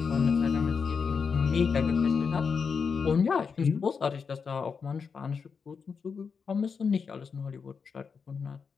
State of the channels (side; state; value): right; quieter; 5.7 dB